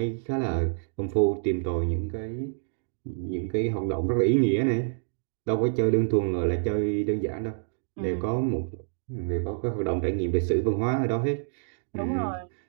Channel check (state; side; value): silent; left; digital silence